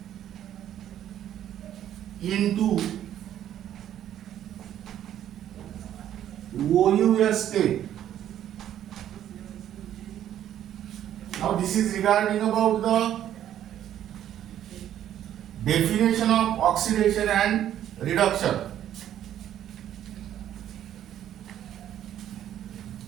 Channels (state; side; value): quieter; left; 11.1 dB